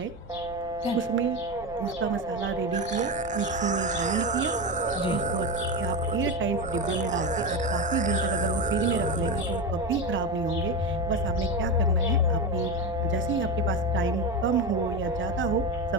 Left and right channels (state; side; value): normal; both; correlation 0.18